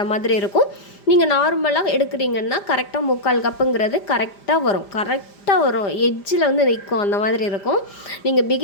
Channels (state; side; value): late; right; 5.0 ms